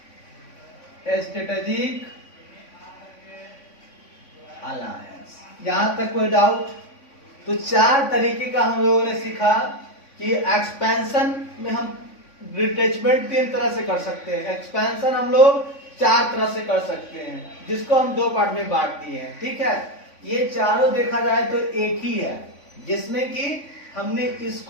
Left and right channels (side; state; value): right; late; 3.5 ms